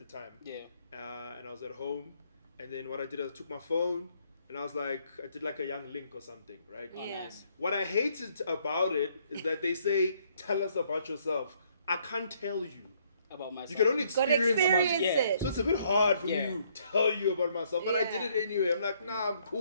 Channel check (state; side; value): inverted; both; correlation -0.68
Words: time, Yeah. and I was at home, and then what I did is I took my phone and I did like a young link or something, right? Oh, Yeah. nice. What I hated about it is that they say, "Tell us about yourself." I can't tell you. About myself. You can only Got experience. experience Yeah. it. So it's a bit hard for Yeah. me to tell you about myself, but I Yeah. did it anyway. I'm like, nah, I'm